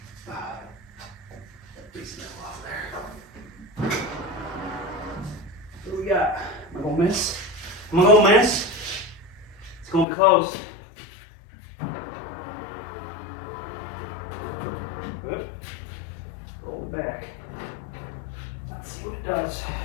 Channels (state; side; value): drops out; right; at 10.1 s